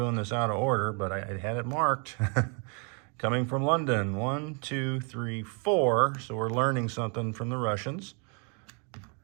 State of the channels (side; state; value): left; quieter; 36.5 dB